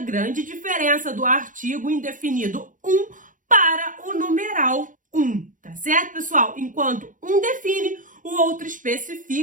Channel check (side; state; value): left; late; 0.38 ms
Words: diferença do artigo indefinido para o numeral tá certo, pessoal? Enquanto um define, o outro